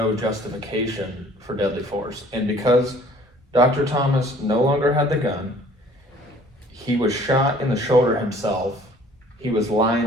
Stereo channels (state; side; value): normal; both; correlation 0.54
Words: justification for deadly force. And because Dr. Thomas no longer had the gun, he was shot in the shoulder himself, he was lying